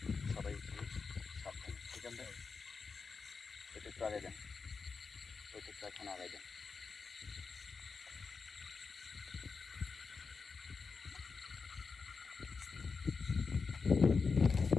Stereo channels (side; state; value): right; quieter; 4.9 dB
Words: সবাই একটু সাবধানে, ঠিক আছে? এটা একটু আগে দেন, ওইটা একটু এখন আগে দেন।